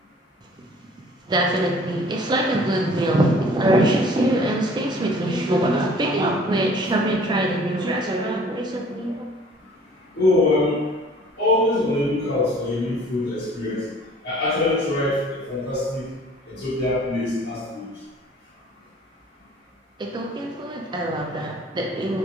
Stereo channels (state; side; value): normal; both; correlation 0.52